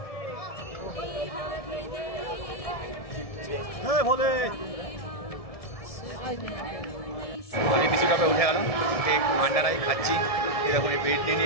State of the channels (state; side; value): late; right; 1.7 ms